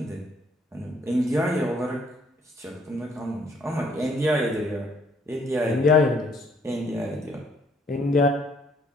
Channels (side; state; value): both; normal; correlation 0.65